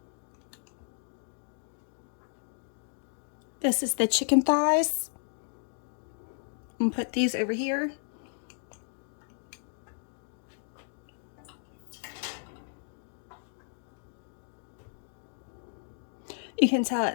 This is the chicken thighs. I'm gonna put these over here. You can tell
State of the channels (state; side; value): silent; right; digital silence